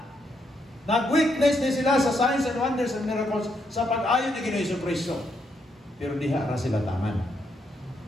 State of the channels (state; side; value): normal; both; correlation 0.77